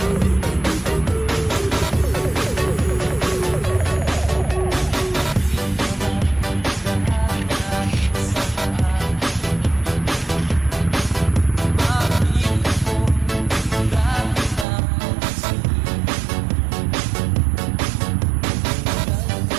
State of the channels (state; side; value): drops out; left; at 14.7 s